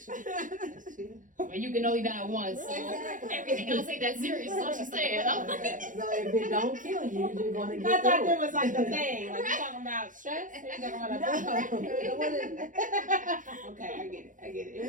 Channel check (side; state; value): left; late; 0.38 ms